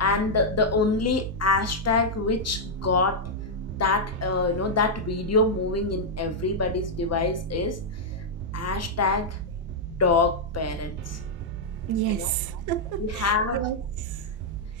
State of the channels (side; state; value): both; normal; correlation -0.05